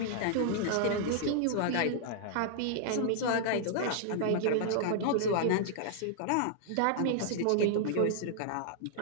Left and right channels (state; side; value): different; both; correlation -0.01